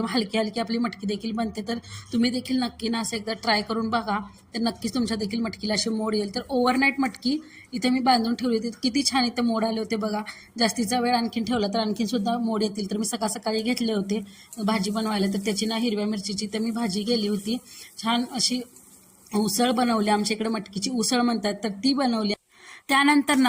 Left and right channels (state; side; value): identical; both; correlation 1.00